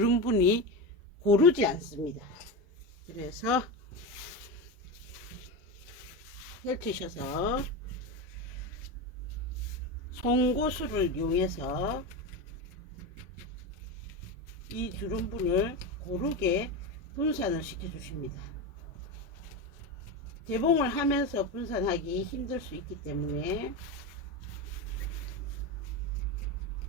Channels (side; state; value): both; normal; correlation 0.19